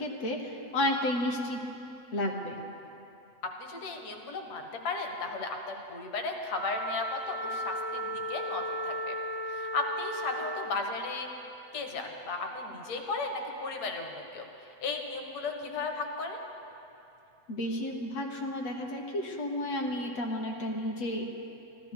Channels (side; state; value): right; late; 8.0 ms